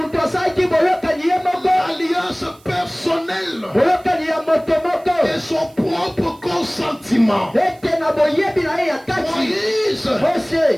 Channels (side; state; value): right; noise; hiss, 29 dB below the sound